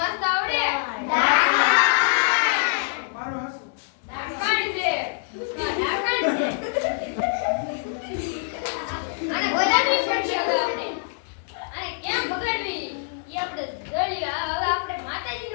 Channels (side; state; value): right; silent; digital silence